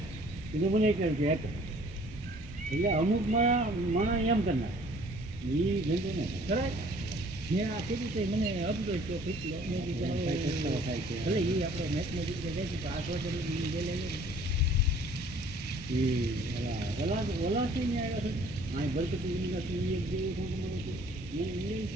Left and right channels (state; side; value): normal; both; correlation 0.55